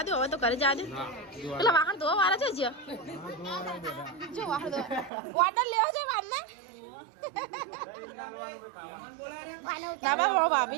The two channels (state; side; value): drops out; left; at 5.1 s